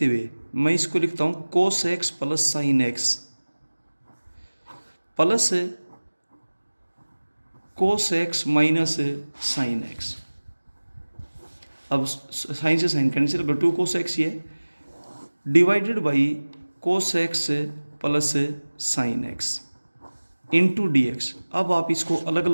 हुए मैं इसको लिखता हूँ कोस x plus sine x plus cos x minus sine x. अब साइन से साइन कैंसिल कर, 2 कोस एक्स ये divided by cos x plus sine x into d x. अब आप इसको अलग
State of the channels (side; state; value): both; inverted; correlation -1.00